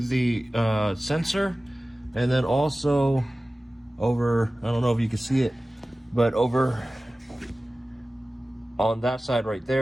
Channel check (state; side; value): normal; both; correlation 0.97